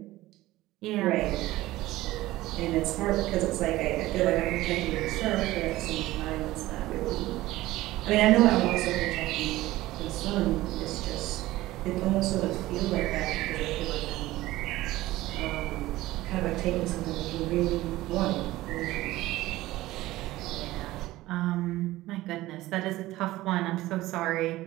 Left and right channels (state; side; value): quieter; left; 17.1 dB